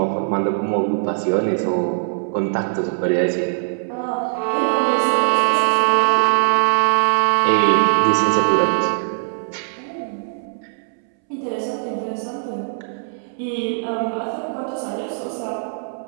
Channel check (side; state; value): left; silent; 65 dB below the other